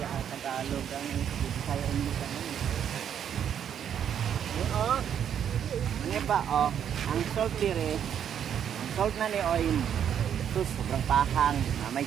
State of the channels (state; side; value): quieter; left; 9.0 dB